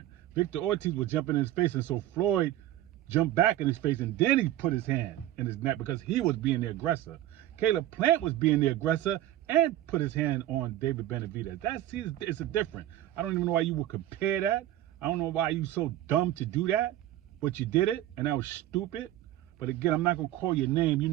Victor Ortiz was jumping in his face, and so Floyd jumped back in his face, and then he put his hand in his neck because he was being the aggressor. Caleb Plant was being the aggressor and put his hand on David Benavidez. It's a different. I don't even know why you would compare that. I don't know why you so dumb to do that, but you did it, and that was stupid. But again, I'm not gonna call your name. You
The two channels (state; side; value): quieter; left; 13.8 dB